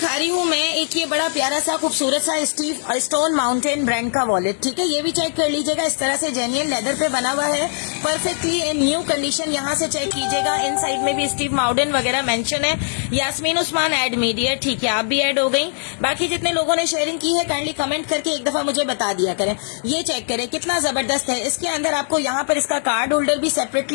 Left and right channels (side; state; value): right; silent; 65 dB below the other